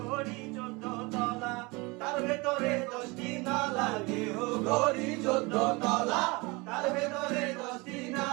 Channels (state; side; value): quieter; left; 25.7 dB